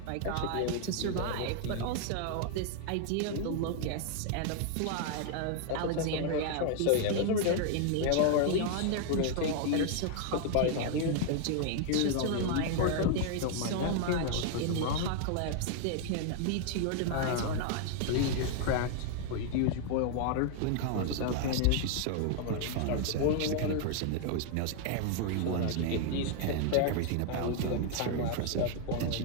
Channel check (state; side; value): different; both; correlation 0.00